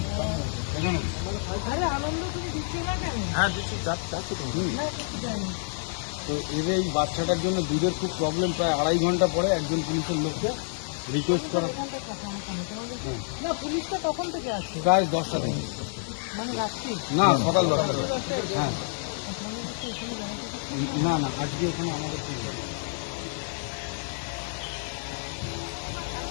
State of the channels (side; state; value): right; silent; digital silence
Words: এখানে হ্যাঁ দিচ্ছি চাচ্ছি তো এদের এই বাচ্চাটার জন্য দুধের খুব প্রবলেম। প্রায় আড়াই ঘন্টা পরে একজন পুলিশের লোককে রিকোয়েস্ট করা। না পুলিশটা কখন থেকে আসছে? প্রায় 10টা থেকে। মানে রাত্রি না সকাল 10টা থেকে। হ্যাঁ না না আজকে ওখানে আমাদের